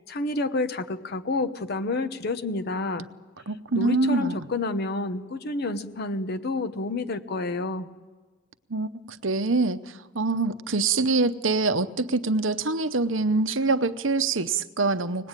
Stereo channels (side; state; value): both; normal; correlation 0.18